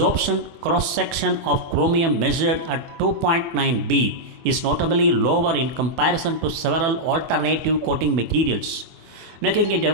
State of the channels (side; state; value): left; late; 24 ms